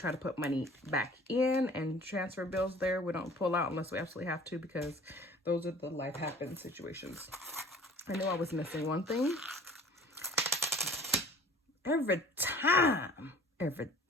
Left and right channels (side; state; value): both; normal; correlation 0.48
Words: to put money back in and transfer bills there. We don't pull out unless we absolutely have to, because those are the life happens situations. I knew I was missing one thing. Every time I